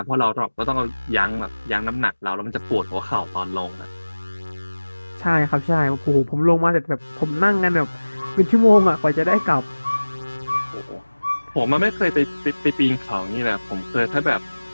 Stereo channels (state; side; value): inverted; both; correlation -1.00